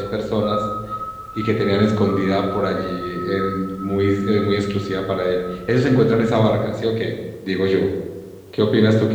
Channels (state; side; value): identical; both; correlation 1.00